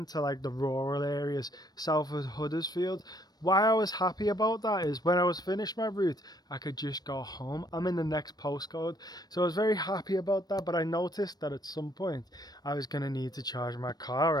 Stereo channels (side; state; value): right; late; 0.19 ms